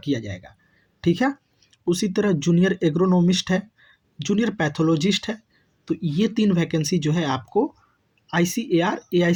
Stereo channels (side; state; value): both; identical; correlation 1.00